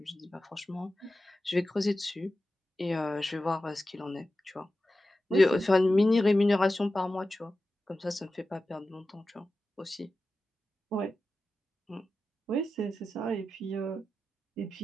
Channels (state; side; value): normal; both; correlation 0.93